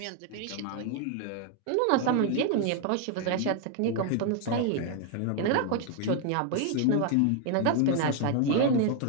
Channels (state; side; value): different; both; correlation 0.00